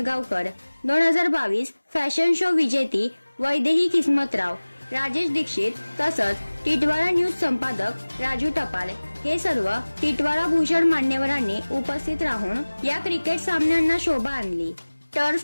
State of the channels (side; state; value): both; inverted; correlation -1.00